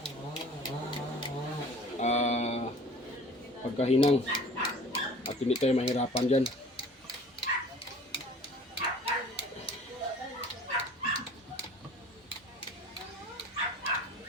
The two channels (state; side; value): normal; both; correlation 0.46